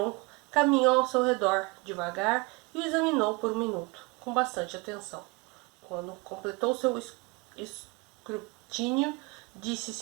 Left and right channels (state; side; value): quieter; left; 26.9 dB